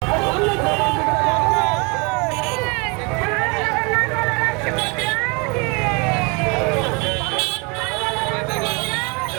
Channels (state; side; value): quieter; left; 30.3 dB